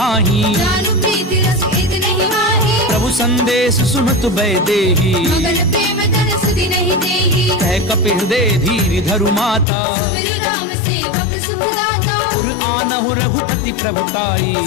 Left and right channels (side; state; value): right; drops out; at 9.7 s